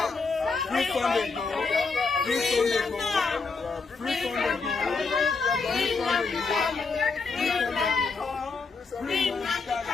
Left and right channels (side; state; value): right; quieter; 4.5 dB